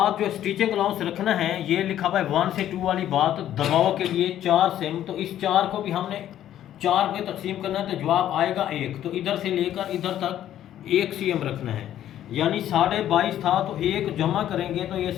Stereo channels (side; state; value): right; quieter; 11.7 dB